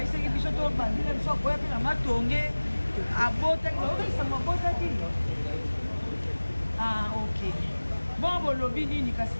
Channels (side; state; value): both; inverted; correlation -1.00